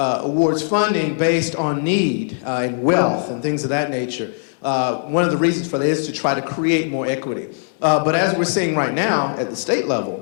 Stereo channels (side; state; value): right; silent; digital silence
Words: funding based on need and wealth and things of that nature. One of the reasons for that is to try to create more equity. But as we're seeing right now at the state